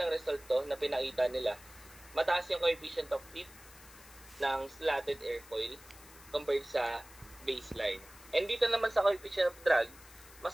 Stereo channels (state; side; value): noise; left; hiss, 20 dB below the sound